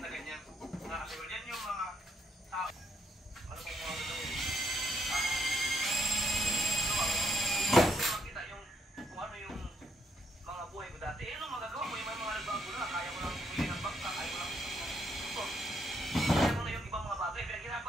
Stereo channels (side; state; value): both; normal; correlation 0.75